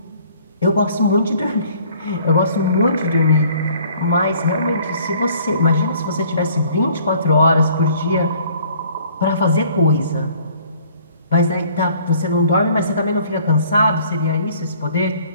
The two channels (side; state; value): both; inverted; correlation -0.56